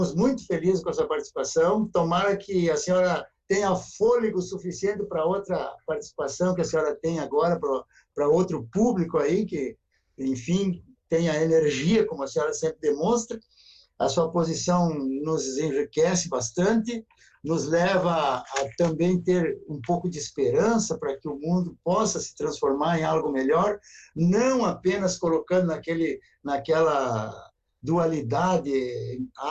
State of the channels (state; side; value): identical; both; correlation 1.00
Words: muito felizes com a sua participação, tomara que a senhora tenha fôlego suficiente para outra participação que a senhora tem agora, para outro público aí, que, enfim, tenha energia, como a senhora sempre demonstra. A sua posição nos enriquece bastante, nos leva a também ter um pouco de esperança para que o mundo possa se transformar em algo melhor, não apenas colocando naquela dualidade